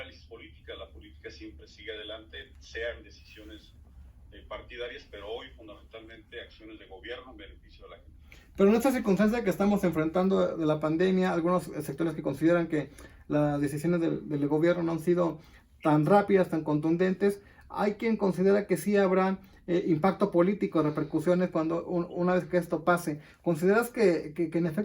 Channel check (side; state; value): both; identical; correlation 1.00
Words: política, la política siempre sigue adelante, sean decisiones partidarias, pero hoy fundamentalmente acciones de gobierno en beneficio de la gente. Pero en esta circunstancia que estamos enfrentando de la pandemia, algunos sectores que consideran que las decisiones del gobierno no han sido tan rápidas, tan contundentes, hay quien considera que sí habrá impacto político, repercusiones cuando una vez que esto pase. ¿Consideras que en